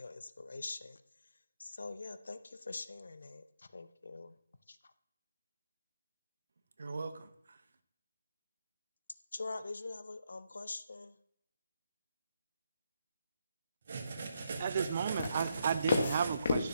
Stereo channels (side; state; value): both; inverted; correlation -0.78